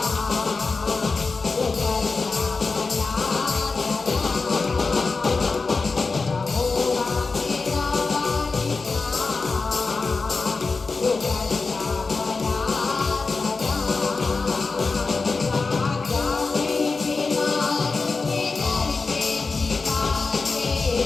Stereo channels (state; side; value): quieter; right; 4.2 dB